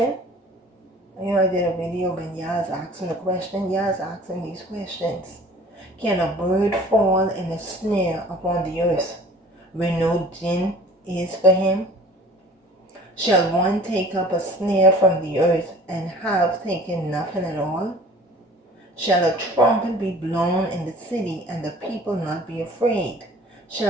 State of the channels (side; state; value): both; normal; correlation 0.47